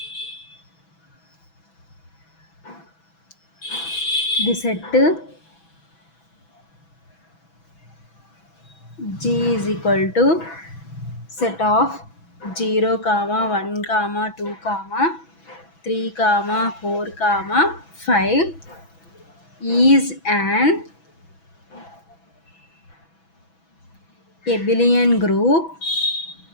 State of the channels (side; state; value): right; late; 6.1 ms